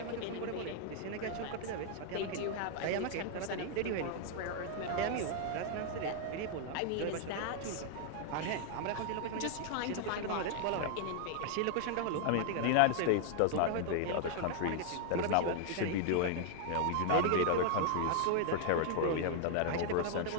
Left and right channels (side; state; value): both; different; correlation 0.00